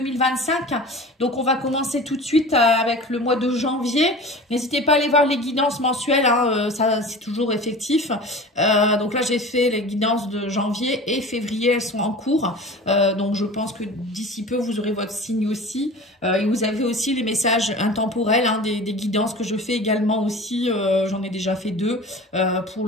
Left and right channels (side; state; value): both; normal; correlation 0.37